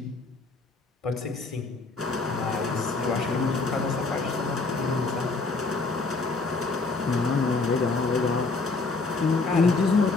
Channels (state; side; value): quieter; right; 3.8 dB